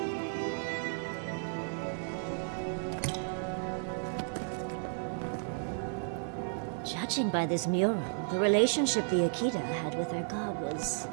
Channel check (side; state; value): left; silent; 55 dB below the other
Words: Judging by this mural, the relationship the Akita had with their god was